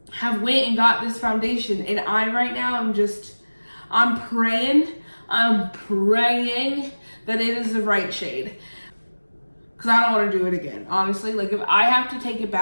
have went and got this foundation, and I right now I'm praying that it is the right shade, because I don't want to do it again, honestly. Like, if I have to take it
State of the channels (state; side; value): inverted; both; correlation -1.00